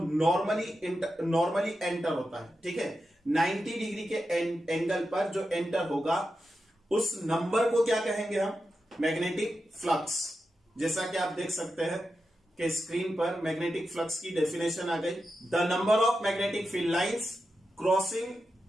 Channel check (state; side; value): normal; both; correlation 0.90